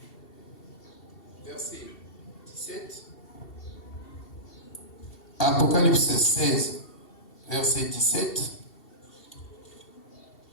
verset 17. Apocalypse 16, verset 17.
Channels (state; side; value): late; right; 2.7 ms